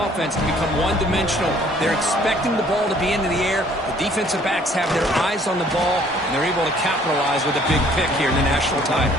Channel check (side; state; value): both; normal; correlation 0.59